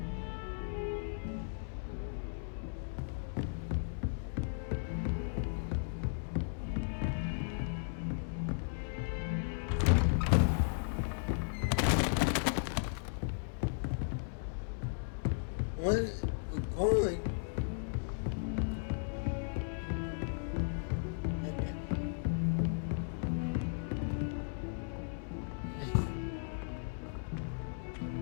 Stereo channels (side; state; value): right; silent; digital silence